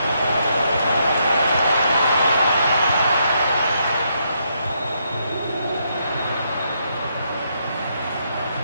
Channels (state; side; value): inverted; both; correlation -0.77